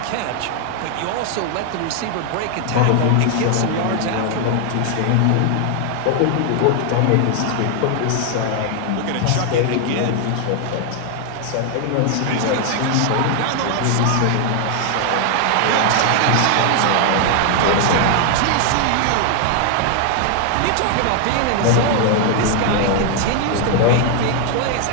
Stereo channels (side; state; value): both; different; correlation 0.00